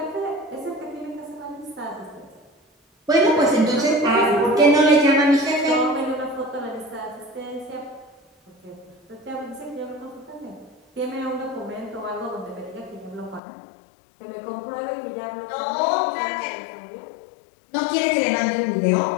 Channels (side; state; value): right; drops out; at 13.4 s